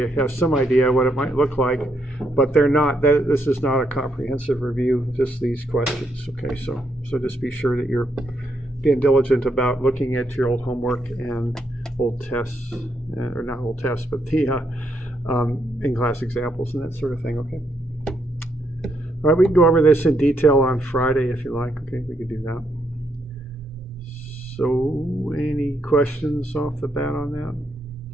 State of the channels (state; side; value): normal; both; correlation 0.77